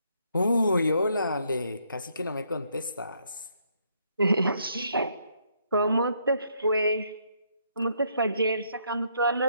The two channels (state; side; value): inverted; both; correlation -0.73